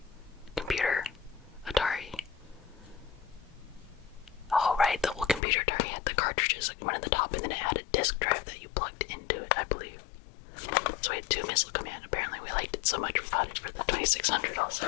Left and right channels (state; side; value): drops out; right; at 5.4 s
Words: computer, Atari. Oh, right, the old computer Atari had the cartridges, like one at the top, and then it had a disk drive that you plugged into it, I believe. So we had two missile command. Apparently we liked it so much we got it for the 2600 also.